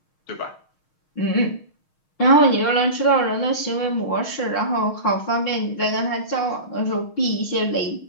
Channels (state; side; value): late; right; 6.4 ms